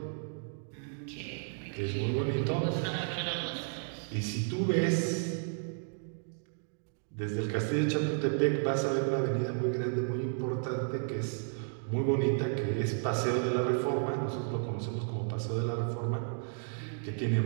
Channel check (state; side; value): silent; left; digital silence